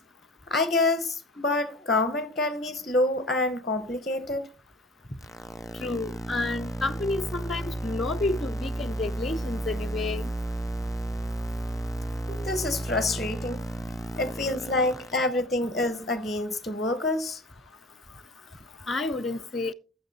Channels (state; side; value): normal; both; correlation 0.48